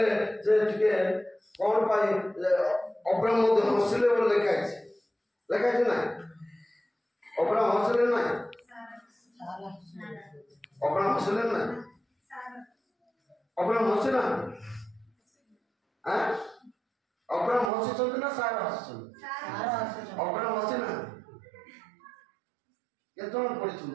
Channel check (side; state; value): left; drops out; at 17.7 s